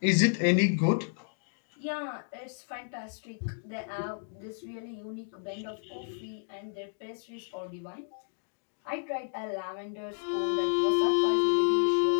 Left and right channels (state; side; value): silent; right; digital silence